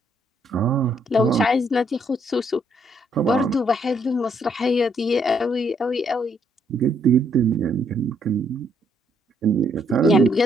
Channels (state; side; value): normal; both; correlation 0.71